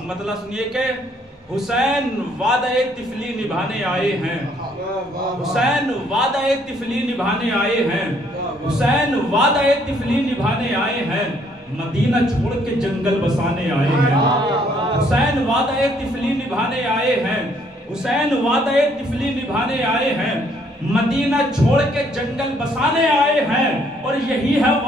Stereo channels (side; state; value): both; normal; correlation 0.66